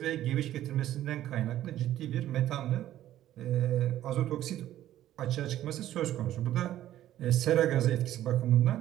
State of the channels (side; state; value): left; quieter; 12.9 dB